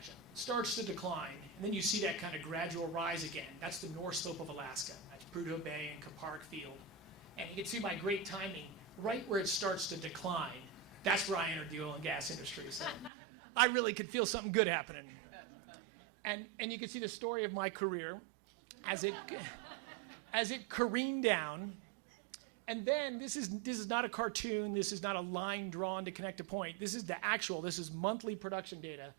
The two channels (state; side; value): drops out; left; at 13.1 s